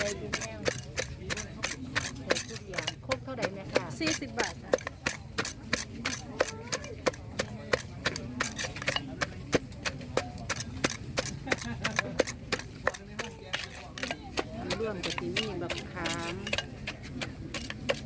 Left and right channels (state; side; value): identical; both; correlation 1.00